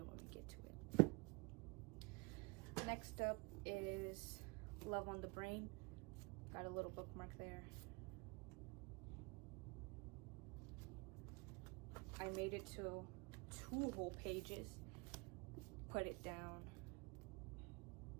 when we get to it. Next up is Love on the Brain. Got a little bookmark there. I made it to 2 whole pages. Put it down.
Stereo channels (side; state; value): left; quieter; 28.7 dB